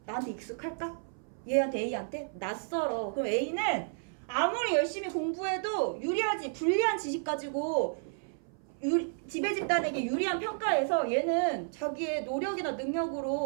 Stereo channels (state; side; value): silent; left; 57 dB below the other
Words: 나한테 익숙할까? 얘한테 A한테? 낯설어. 그럼 A는 아무리 열심히 공부해도 유리하지 불리한 지식 가지고 지배 집단에게 유리한 평가에서 얘는 자기의 노력이나